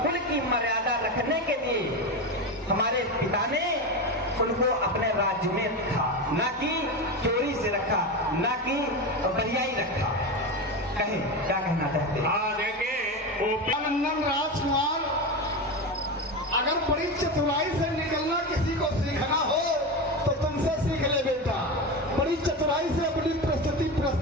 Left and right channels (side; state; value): both; normal; correlation 0.19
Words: कुल की मर्यादा रखने के लिए हमारे पिता ने उनको अपने राज्य में रखा, ना कि चोरी से रखा, ना कि बरियाई रखा। कहे क्या कहना चाहते हैं? हाँ देखिए, नंदन राजकुमार, अगर बड़ी चतुराई से निकलना किसी को सीखना हो तो तुमसे सीख ले बेटा। बड़ी चतुराई से अपनी प्रस्तुति